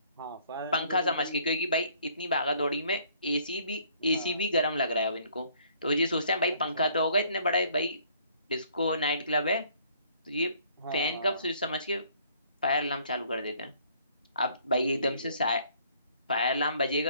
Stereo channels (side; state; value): both; inverted; correlation -0.61